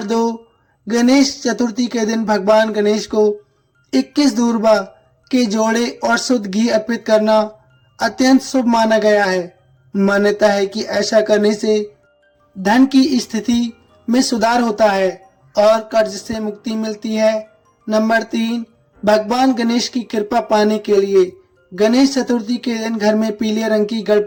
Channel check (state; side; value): identical; both; correlation 1.00